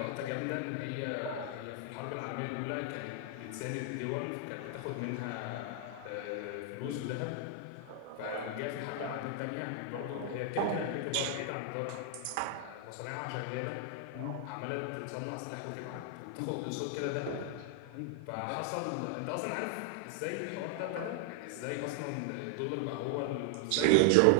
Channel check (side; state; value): both; different; correlation 0.00